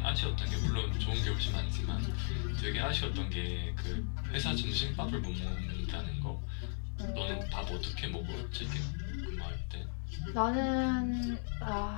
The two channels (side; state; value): right; silent; 54 dB below the other